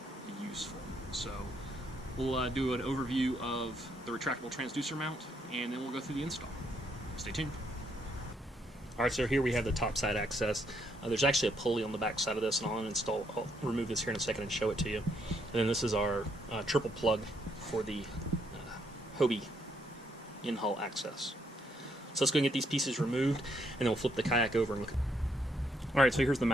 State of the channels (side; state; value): both; normal; correlation 0.73